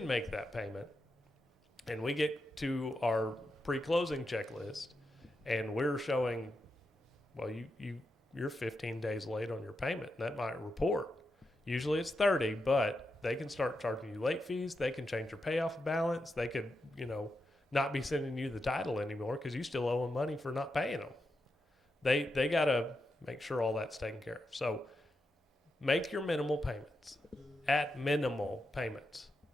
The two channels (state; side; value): normal; both; correlation 0.86